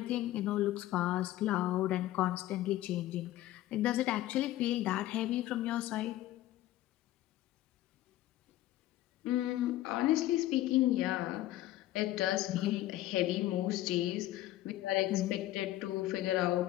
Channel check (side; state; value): right; quieter; 15.0 dB